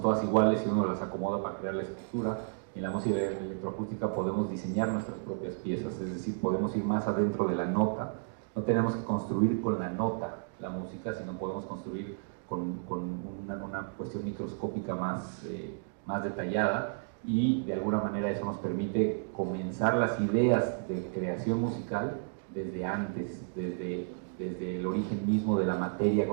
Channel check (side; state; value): left; silent; digital silence